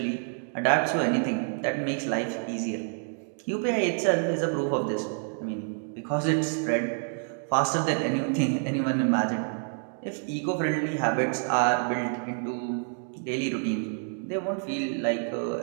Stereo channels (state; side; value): silent; left; 57 dB below the other